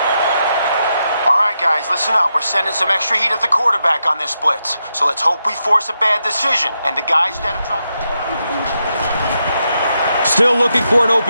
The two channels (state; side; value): inverted; both; correlation -0.85